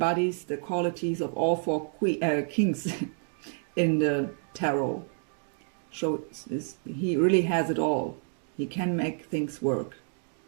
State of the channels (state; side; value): silent; left; 59 dB below the other